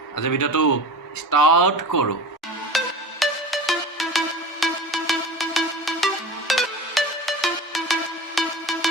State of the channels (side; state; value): both; normal; correlation 0.34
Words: আজি ভিডিঅ'টো ষ্টাৰ্ট কৰো